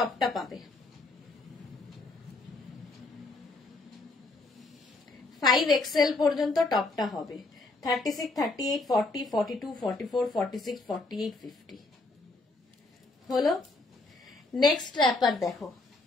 পাবে। 5XL পর্যন্ত টপটা হবে। 36, 38, 40, 42, 44, 46, 48, 50 হলো। নেক্সট র্যাপার দেখো,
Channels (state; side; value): quieter; right; 3.2 dB